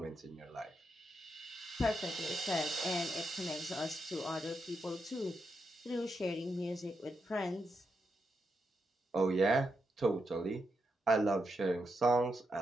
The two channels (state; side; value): normal; both; correlation 0.84